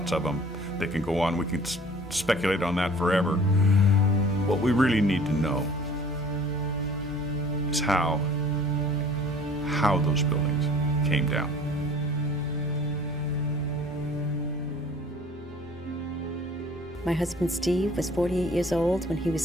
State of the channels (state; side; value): normal; both; correlation 0.49